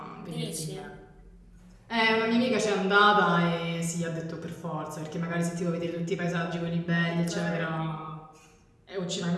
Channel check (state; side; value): identical; both; correlation 1.00